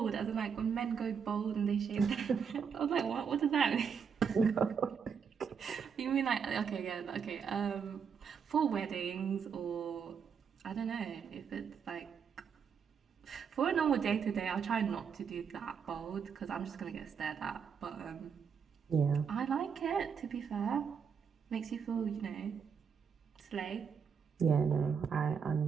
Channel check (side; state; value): left; quieter; 6.6 dB